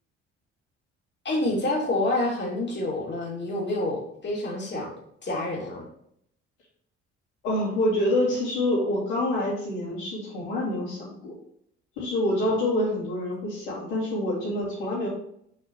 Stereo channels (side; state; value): both; normal; correlation 0.33